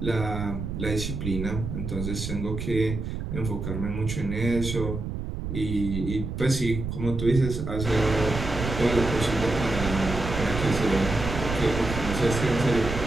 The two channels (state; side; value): noise; right; rumble, 5 dB below the sound